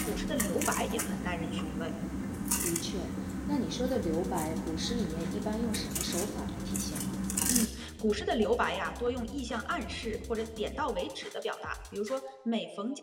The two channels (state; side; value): identical; both; correlation 1.00